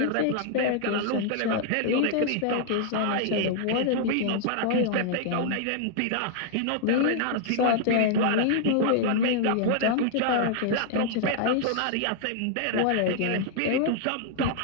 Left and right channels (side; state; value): both; different; correlation -0.01